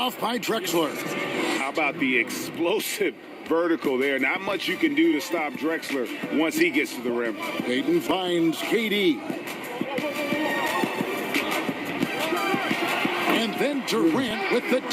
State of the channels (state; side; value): identical; both; correlation 1.00